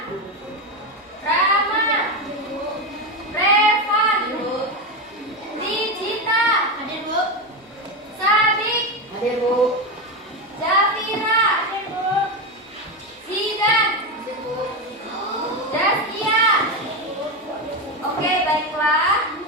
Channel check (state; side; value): normal; both; correlation 0.14